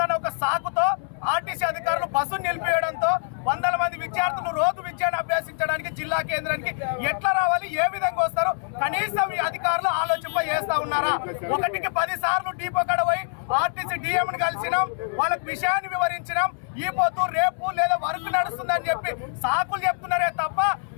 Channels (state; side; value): silent; right; 61 dB below the other